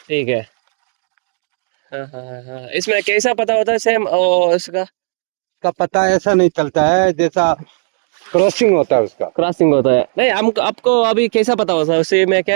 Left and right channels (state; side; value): silent; left; 57 dB below the other